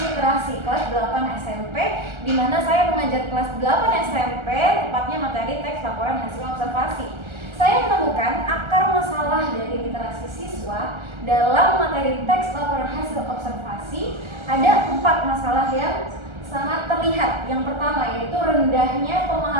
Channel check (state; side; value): late; left; 1.3 ms